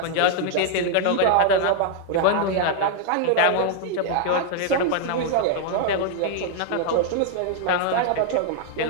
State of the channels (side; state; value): both; different; correlation 0.00